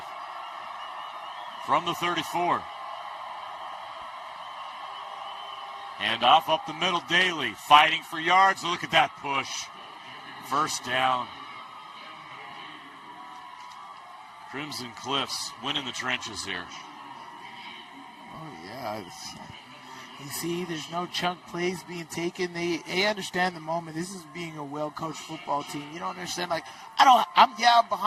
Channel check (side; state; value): both; identical; correlation 1.00